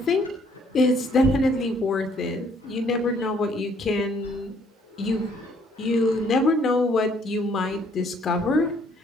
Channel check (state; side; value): normal; both; correlation 0.64